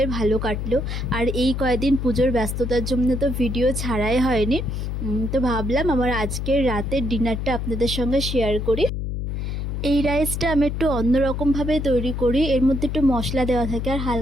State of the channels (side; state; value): left; noise; hum, 3 dB below the sound